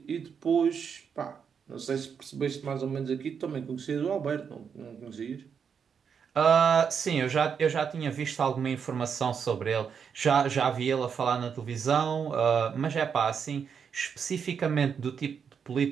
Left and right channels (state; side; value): quieter; left; 6.8 dB